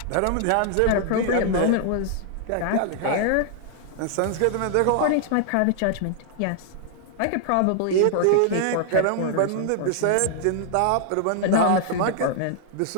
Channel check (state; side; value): different; both; correlation 0.00